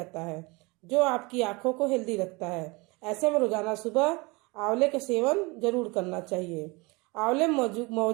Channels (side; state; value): left; quieter; 25.8 dB